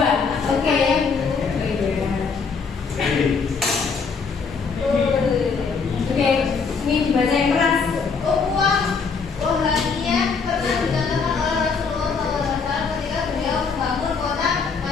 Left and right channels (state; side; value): quieter; right; 5.2 dB